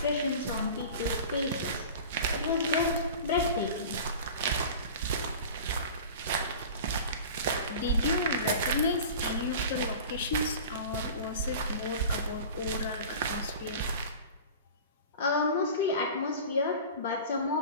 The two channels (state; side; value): inverted; both; correlation -0.37